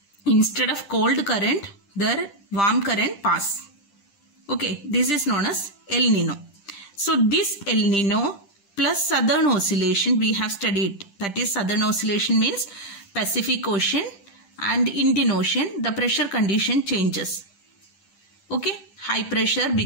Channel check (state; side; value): late; right; 10 ms